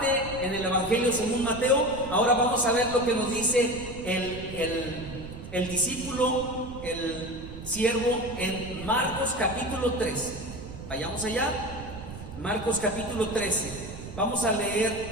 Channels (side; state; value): right; noise; rumble, 12 dB below the sound